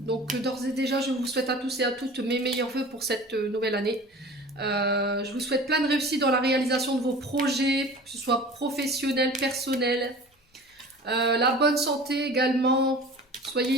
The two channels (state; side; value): normal; both; correlation 0.40